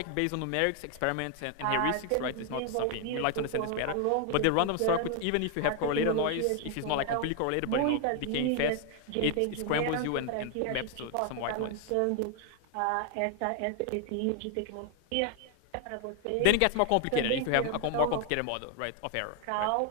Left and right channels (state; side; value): different; both; correlation 0.00